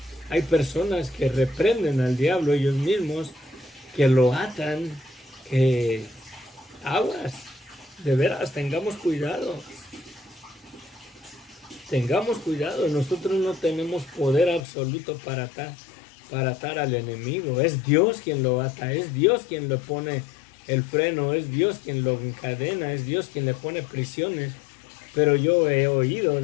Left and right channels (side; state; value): right; drops out; at 14.6 s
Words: Hay personas que reprenden al diablo ellos mismos, que lo atan, que aguas, de veras, tengamos cuidado. Tengamos cuidado, nosotros no tenemos poder absoluto para atar al enemigo. Es Dios quien lo ata, es Dios quien le pone el freno, es Dios quien lo encadena, es Dios quien le pone prisiones. Pero yo he oído